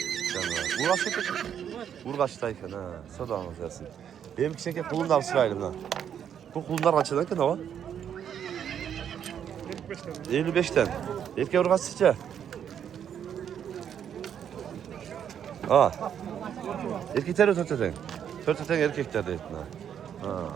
Urgaç'tayken ha. Soda anlatırsın. Benim kişiye kulundan sıraydım ha. Bu kulunlar kaçadan ki ne var? 55'ten. Erkek Urgaç sıca. Erkekler öteden. Öteden erkekler deydi.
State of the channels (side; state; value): left; quieter; 8.8 dB